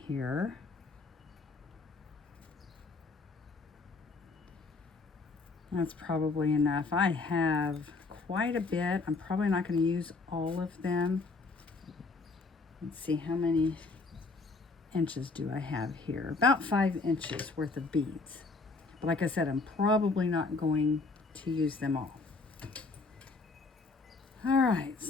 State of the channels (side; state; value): right; quieter; 3.9 dB